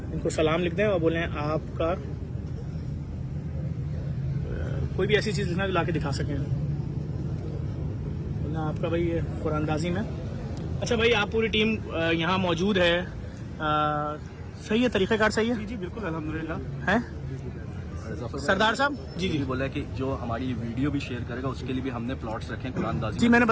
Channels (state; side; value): identical; both; correlation 1.00